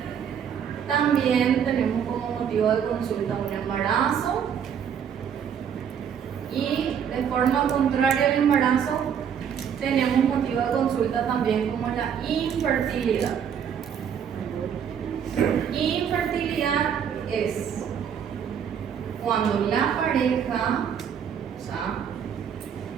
También tenemos como motivo de consulta un embarazo. Y de forma contraria al embarazo, tenemos motivo de consulta también como la infertilidad. Infertilidad es cuando la pareja, o sea,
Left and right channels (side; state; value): left; quieter; 8.1 dB